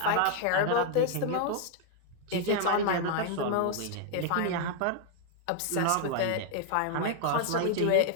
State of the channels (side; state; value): both; different; correlation 0.00